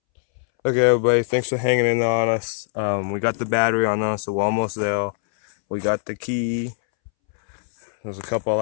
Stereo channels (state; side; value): silent; right; 64 dB below the other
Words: Okay, everybody, thanks for hanging in on us. We got the battery on us, so we're almost there. We got the key. There's a couple of